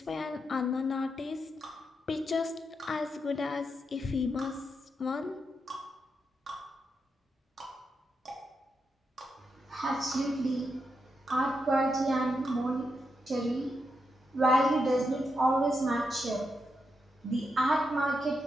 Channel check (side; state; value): both; normal; correlation 0.84